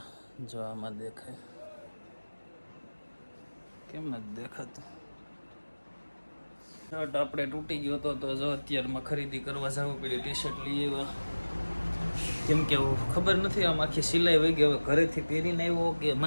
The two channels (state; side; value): inverted; both; correlation -1.00